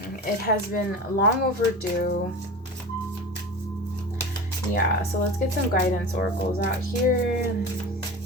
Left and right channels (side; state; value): both; normal; correlation 0.31